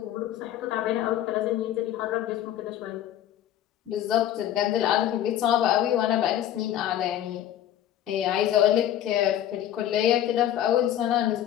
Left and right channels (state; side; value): quieter; right; 11.5 dB